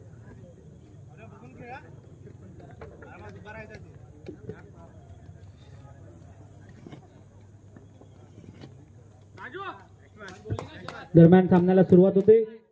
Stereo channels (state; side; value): identical; both; correlation 1.00